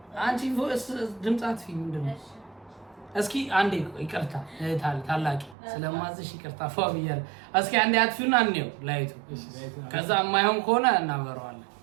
አንቺ ቮይስ ድምጻት ፊልም ምንድነው? እስኪ አንዴ ይቅርታ ታላቂ ስለማዝሽ ይቅርታ ፏብያል። እስኪ አንዴ አጥፊውና እንየው ላይቱ። ከዛ የማይሆን ከሆነ እናበረዋለን።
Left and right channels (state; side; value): drops out; left; at 5.6 s